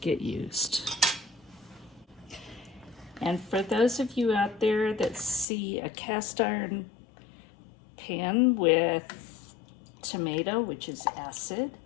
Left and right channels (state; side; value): drops out; right; at 5.5 s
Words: used. And for those of you out there that see a cast iron pan with tomato, which is acid,